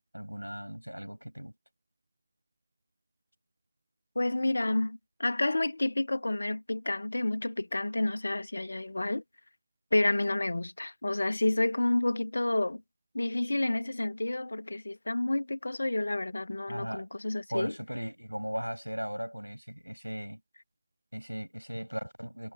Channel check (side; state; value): both; inverted; correlation -1.00